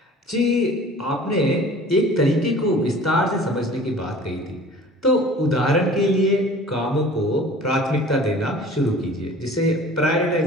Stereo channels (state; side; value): normal; both; correlation 0.45